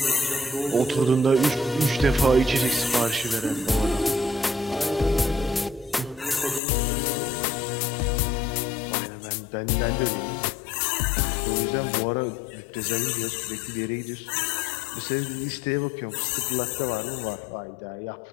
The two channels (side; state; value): right; drops out; at 6.6 s